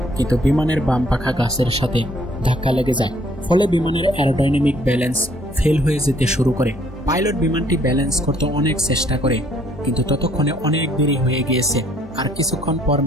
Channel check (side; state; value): both; normal; correlation 0.64